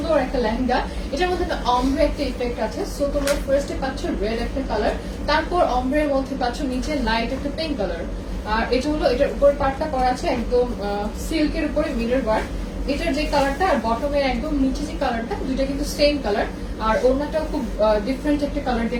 একটা লেহেঙ্গা। এটার মধ্যে একটা অমব্রে একটা ইফেক্ট আছে। সো তোমরা ফার্স্টে পাচ্ছ রেড একটা কালার, তারপর অমব্রের মধ্যে পাচ্ছ নিচে লাইট একটা পিঙ্ক কালার। আর এটা হলো এটার উপরে পার্টটা করা আছে একদম সিল্কের উপরে মিরর ওয়ার্ক। এটার যে কালারটা আর বটমের একদম নিচে যে কালারটা দুইটা কিন্তু সেম কালার। আর ওড়নাটাও খুব ডিফারেন্ট একটা কালার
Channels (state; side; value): identical; both; correlation 1.00